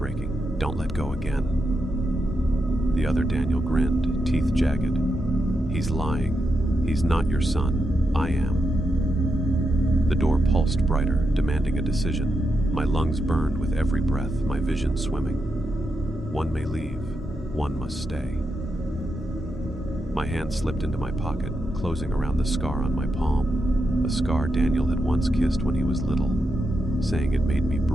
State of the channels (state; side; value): normal; both; correlation 0.85